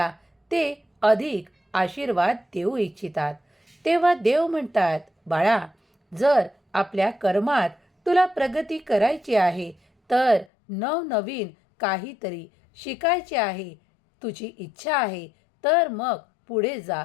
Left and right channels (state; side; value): drops out; right; at 10.5 s